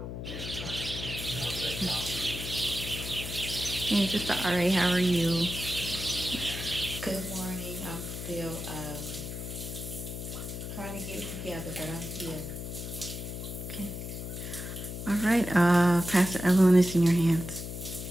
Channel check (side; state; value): left; noise; hum, 7 dB below the sound